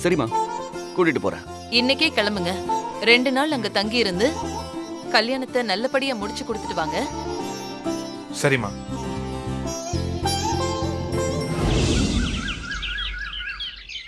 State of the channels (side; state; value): both; identical; correlation 1.00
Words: சரிம்மா, கூட்டிட்டு போறேன். இன்னைக்கே கிளம்புங்க. 2 நாள் அங்க தங்கி இருந்து கல்யாணத்தை நல்லபடியா முடிச்சு கொடுத்துட்டு வாங்க. சரிம்மா.